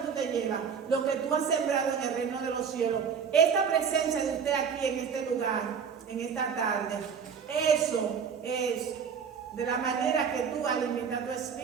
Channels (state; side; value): quieter; left; 6.7 dB